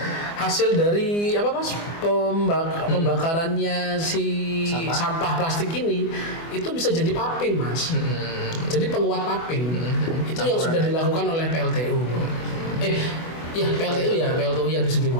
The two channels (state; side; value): late; right; 24 ms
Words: hasil dari Mas, pembakarannya si sampah plastik ini itu bisa jadi paping, Mas. Jadi penguat paping. Itu yang sudah dilakukan oleh PLTU. PLTU yang di